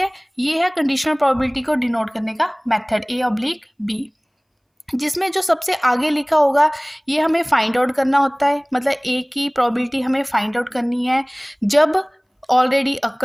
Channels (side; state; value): both; identical; correlation 1.00